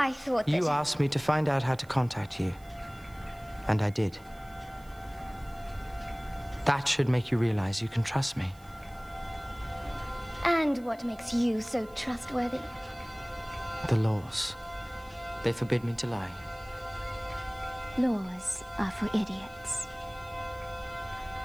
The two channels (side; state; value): right; noise; hiss, 27 dB below the sound